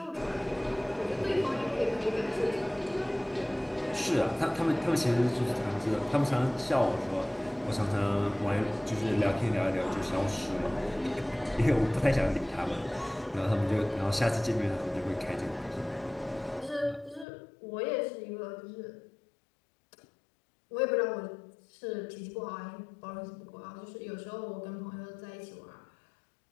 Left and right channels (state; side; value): drops out; right; at 17.2 s